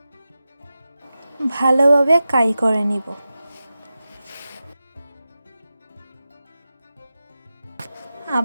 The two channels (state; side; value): inverted; both; correlation -0.93